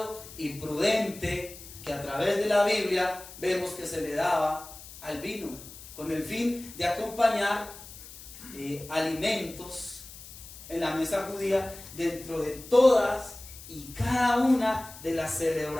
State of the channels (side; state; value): left; noise; hiss, 16 dB below the sound